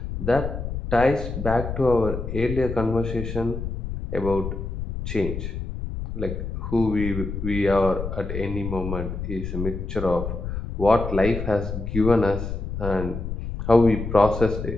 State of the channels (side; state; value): left; noise; rumble, 5 dB below the sound